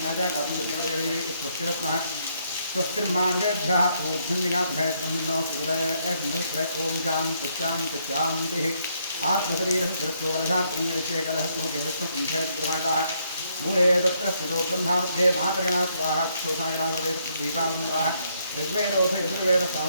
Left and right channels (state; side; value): inverted; both; correlation -0.73